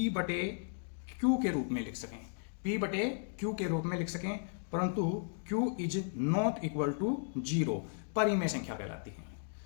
के रूप में लिख सकें, P/Q के रूप में लिख सकें, परंतु Q is not equal to 0 परिमेय संख्या कहलाती है।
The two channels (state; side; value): silent; right; digital silence